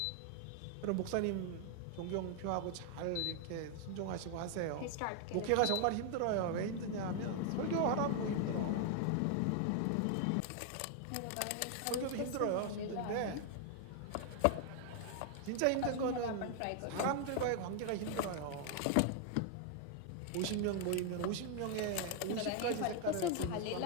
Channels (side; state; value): both; different; correlation 0.00